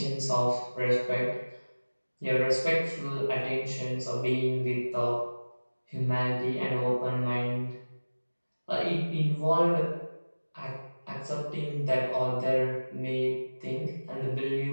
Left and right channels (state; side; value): inverted; both; correlation -1.00